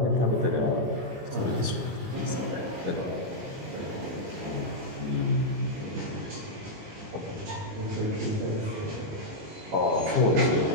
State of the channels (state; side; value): late; left; 19 ms